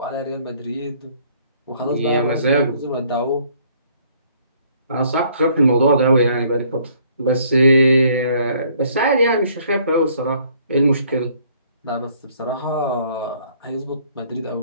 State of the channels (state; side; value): inverted; both; correlation -0.61